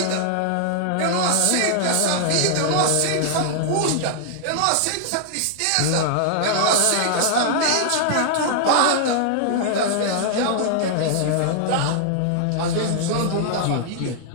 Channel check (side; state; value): both; different; correlation -0.01